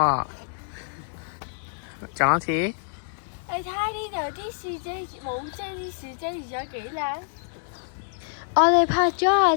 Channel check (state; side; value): silent; right; 61 dB below the other